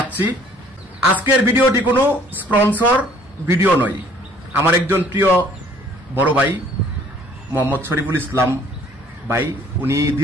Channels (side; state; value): both; normal; correlation 0.57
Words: আজকের ভিডিওটি কোনো স্পন্সর ভিডিও নয়। আমার একজন প্রিয় বড় ভাই মোহাম্মদ শরীফুল ইসলাম ভাই, উনি